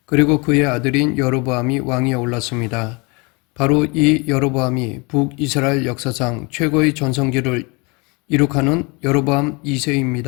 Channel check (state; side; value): quieter; right; 29.1 dB